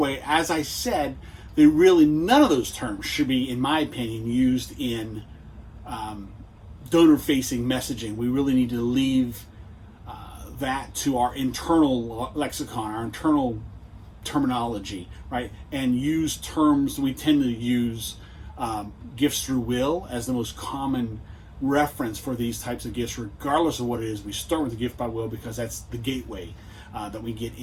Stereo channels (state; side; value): identical; both; correlation 1.00